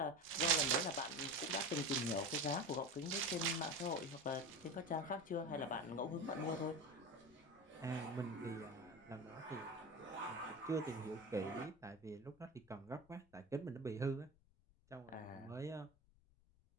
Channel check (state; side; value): noise; left; rumble, 29 dB below the sound